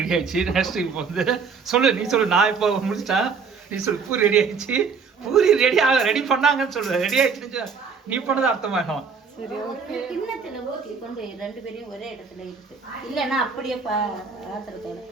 ஆயிடுச்சு. நெக்ஸ்ட் இப்போ வந்து சொல்லு, நீ சொல்லு. நான் இப்போ முடிச்சிட்டா, நீ சொல்லு. பூரி ரெடி ஆயிடுச்சு. பூரி ரெடி பண்ணாங்கன்னு சொல்லு. ரெடி ஆயிடுச்சு நீ பண்ணது அர்த்தமாகும். சரி, ஓகே. கிண்ணத்துல ஊற்றி கொண்டு ரெண்டு பேரையும் ஒரே இடத்துல இருக்கு. இல்லைன்னா அப்படியே பாத்திரத்தோட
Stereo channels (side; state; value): left; quieter; 5.5 dB